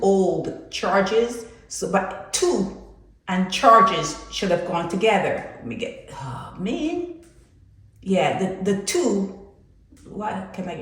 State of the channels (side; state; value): both; identical; correlation 1.00